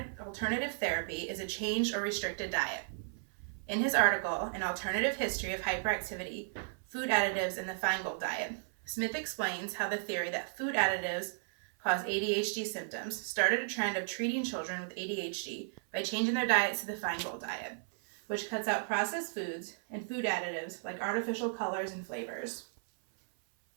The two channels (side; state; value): left; silent; 55 dB below the other